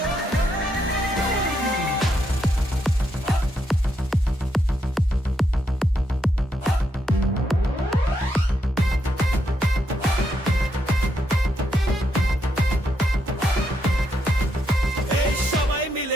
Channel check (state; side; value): normal; both; correlation 0.79